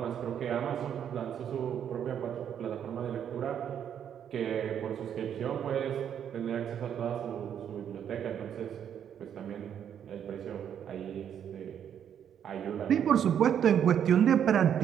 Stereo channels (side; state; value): left; quieter; 9.0 dB